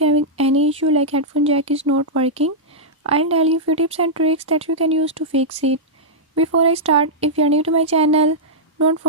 you're having any issue like headphone jack is not working, I'll tell you few tips and tricks that you can use to fix it. Before I start, if you're new to my channel, don't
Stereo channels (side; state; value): both; normal; correlation -0.11